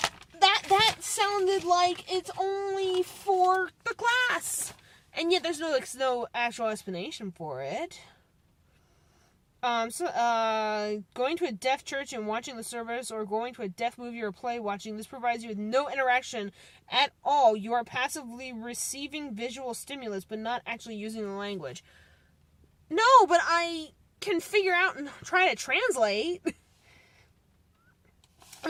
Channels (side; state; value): both; identical; correlation 1.00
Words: that sounded like it's only for the class. And yet there's no actual explanation for it. Going to a deaf church and watching the service, or going to a deaf movie or play watching, this provides you with no interaction at all. You are passively receiving visual stimulus, but not actually using the language. No, but I can figure out and try to translate. I